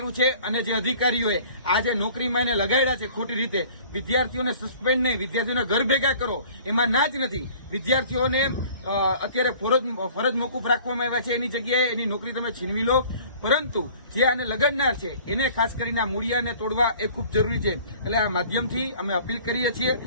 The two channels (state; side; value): inverted; both; correlation -0.49